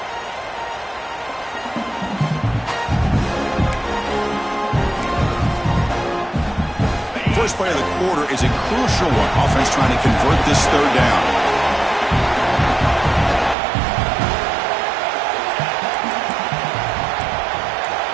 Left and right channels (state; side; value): drops out; left; at 13.6 s